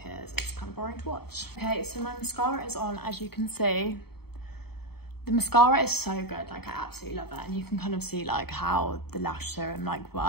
it's kind of boring to watch. Okay, so my mascara is on, as you can see. The mascara is so good, like I absolutely love it, and you can kind of see like how the lash serum like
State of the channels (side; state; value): right; late; 0.96 ms